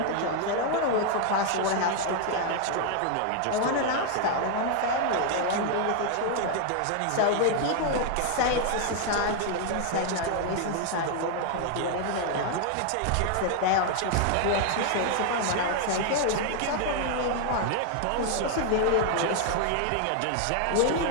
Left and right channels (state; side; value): different; both; correlation 0.00